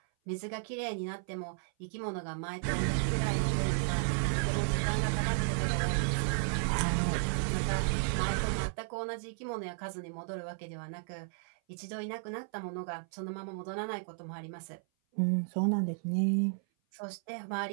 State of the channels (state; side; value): silent; left; 55 dB below the other